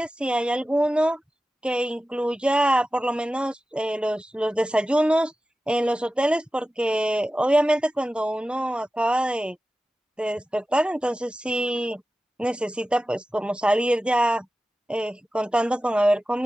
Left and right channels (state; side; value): normal; both; correlation 0.95